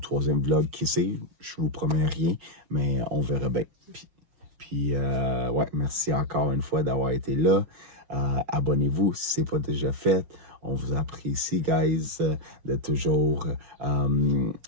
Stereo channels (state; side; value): late; left; 6.2 ms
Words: vlog, qui sait? Je vous promets rien, mais on verra bien. Puis ouais, merci encore une fois d'avoir été là. Abonnez-vous si ce n'est pas déjà fait. On vous apprécie, guys, de toujours